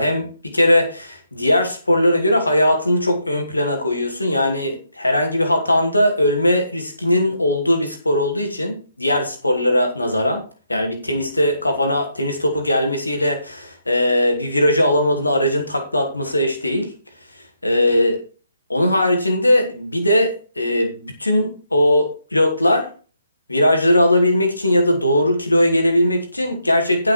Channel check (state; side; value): inverted; both; correlation -0.80